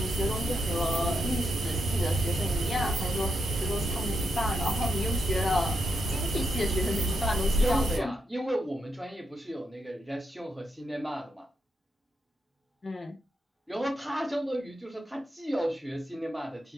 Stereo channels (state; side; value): normal; both; correlation 0.82